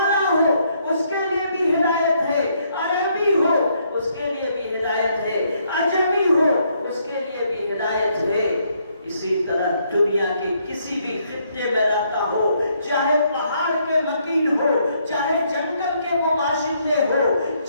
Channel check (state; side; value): inverted; both; correlation -0.72